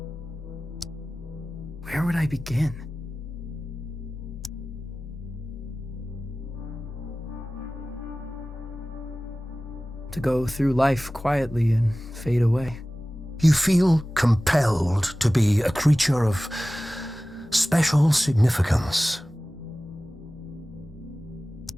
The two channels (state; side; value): normal; both; correlation 0.97